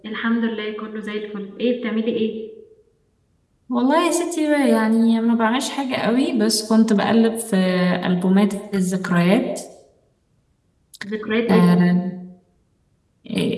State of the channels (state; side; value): identical; both; correlation 1.00